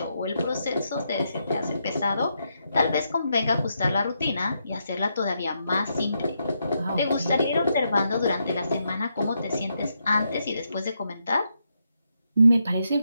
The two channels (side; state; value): both; inverted; correlation -0.81